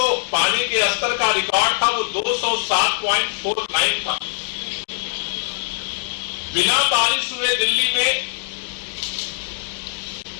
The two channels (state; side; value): silent; right; 56 dB below the other